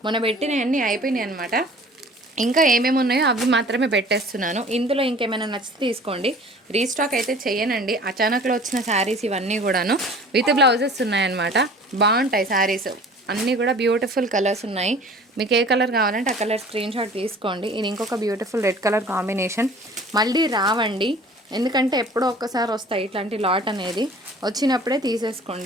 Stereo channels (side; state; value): both; normal; correlation 0.47